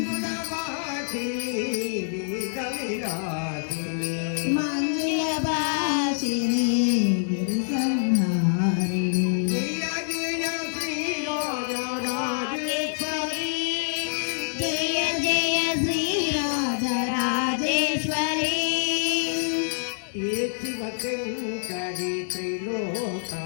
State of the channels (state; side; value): silent; right; 61 dB below the other